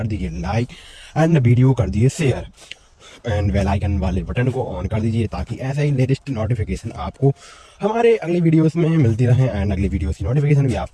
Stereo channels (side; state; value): both; identical; correlation 1.00